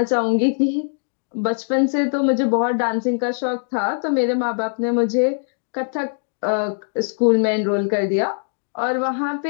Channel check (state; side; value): silent; right; digital silence